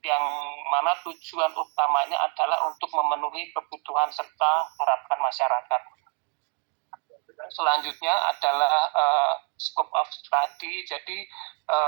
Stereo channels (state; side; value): quieter; left; 40.0 dB